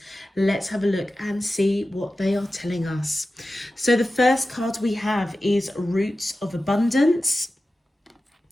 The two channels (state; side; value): normal; both; correlation 0.94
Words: Let's have a look and see what they are telling us. So the first card we have is Roots of Abundance.